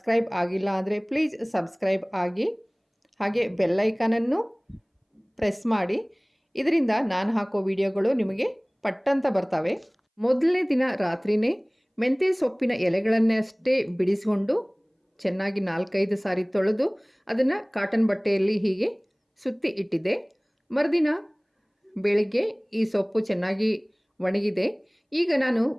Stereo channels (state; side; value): identical; both; correlation 1.00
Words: ಆಗಿಲ್ಲ ಅಂದರೆ ಪ್ಲೀಸ್ ಸಬ್ಸ್ಕ್ರೈಬ್ ಆಗಿ, ಹಾಗೆ ಬೆಲ್ಲೈಕಾನನ್ನು ಪ್ರೆಸ್ ಮಾಡಿ. ಇದರಿಂದ ನಾನು ಹಾಕೋ ವಿಡಿಯೋಗಳು ನಿಮಗೆ ಪಟ್ಟಂತ ಬರ್ತವೆ. ಮೊದಲನೇ ದಿನ ರಾತ್ರಿಯೇ ಮೆಂತ್ಯ ಸೊಪ್ಪಿನ ಎಲೆಗಳನ್ನಷ್ಟೇ ಬಿಡಿಸಿಕೊಂಡು ಚೆನ್ನಾಗಿ 4-5 ಸಾರಿ ತೊಳೆದು ಅದನ್ನು ಕಾಟನ್ ಬಟ್ಟೆಯಲ್ಲಿ ಹೀಗೆ ಸುತ್ತಿ ಇಟ್ಟಿದ್ದೆ. ಮರುದಿನ ಬೆಳಿಗ್ಗೆ ಈ ಸೊಪ್ಪು ಚೆನ್ನಾಗಿ ಒಣಗಿದೆ. ಈಗ ನಾನು